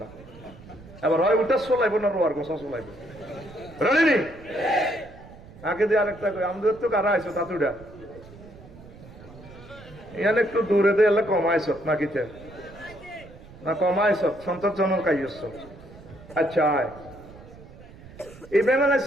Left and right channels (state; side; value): noise; right; rumble, 19 dB below the sound